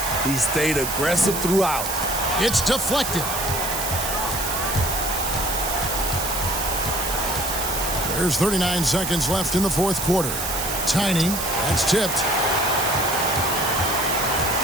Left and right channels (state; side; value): noise; right; hiss, 4 dB below the sound